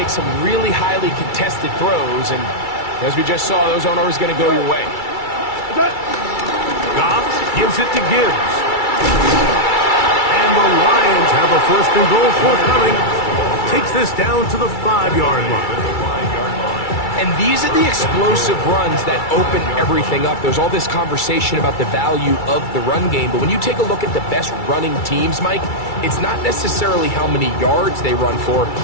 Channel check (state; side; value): late; right; 2.3 ms